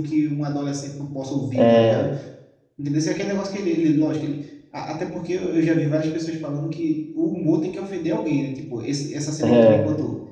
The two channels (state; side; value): identical; both; correlation 1.00